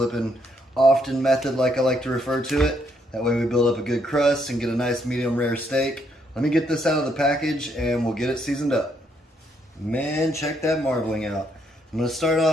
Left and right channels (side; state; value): both; normal; correlation 0.73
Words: often method like I like to refer to it. That way we build up a good crust and get a nice medium rare steak. Let me get this out of the package and we'll get it seasoned up. Man, check that marbling out. I'm gonna start